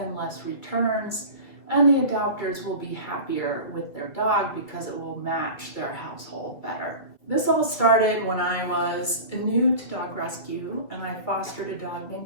less returns, and the adopters will be happier with their dog because it will match their household better. This all started when I was new to dog rescue and I fostered a dog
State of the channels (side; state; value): right; late; 2.0 ms